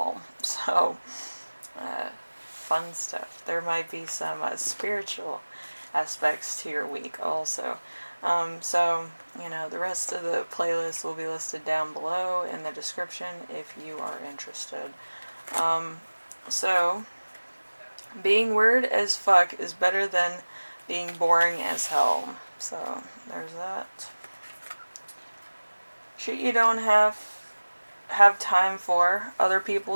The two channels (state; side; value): inverted; both; correlation -1.00